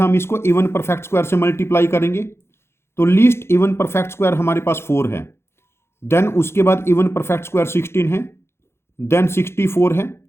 इसको इवन परफेक्ट स्क्वायर से मल्टीप्लाई करेंगे। तो लीस्ट इवन परफेक्ट स्क्वायर हमारे पास 4 है, देन उसके बाद इवन परफेक्ट स्क्वायर 16 है, देन 64 है,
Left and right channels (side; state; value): right; late; 0.12 ms